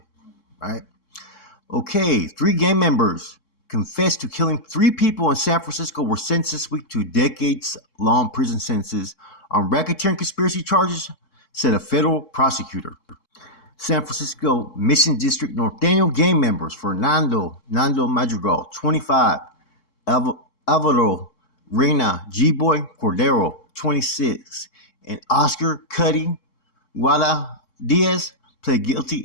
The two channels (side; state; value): right; late; 3.7 ms